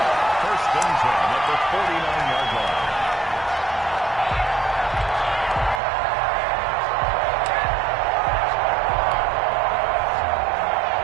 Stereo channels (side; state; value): left; drops out; at 5.8 s